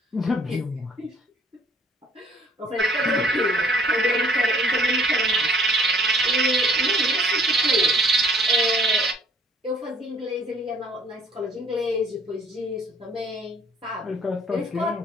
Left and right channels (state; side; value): normal; both; correlation 0.59